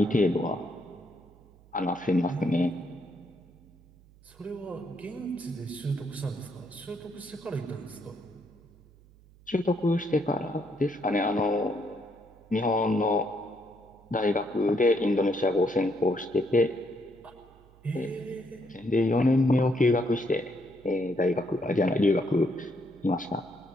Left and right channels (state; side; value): noise; right; hum, 26 dB below the sound